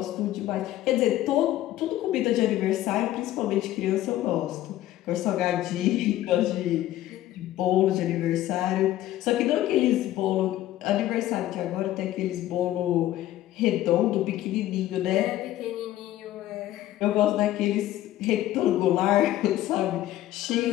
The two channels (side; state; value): right; quieter; 14.2 dB